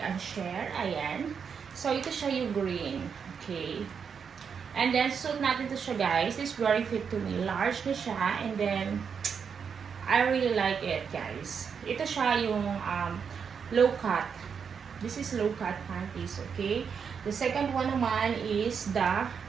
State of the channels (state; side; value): quieter; left; 6.6 dB